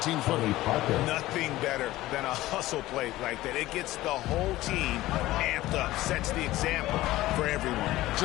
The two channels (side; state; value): right; quieter; 16.7 dB